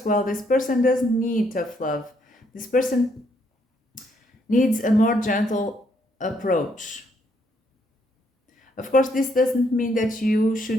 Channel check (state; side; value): normal; both; correlation 0.72